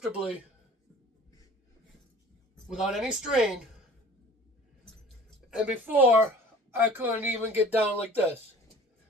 without any strain. And before, I couldn't even get down like this.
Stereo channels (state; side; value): normal; both; correlation 0.46